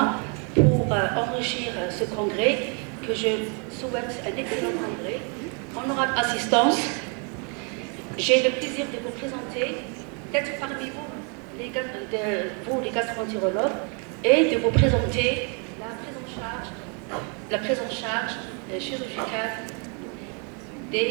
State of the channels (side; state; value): left; quieter; 37.2 dB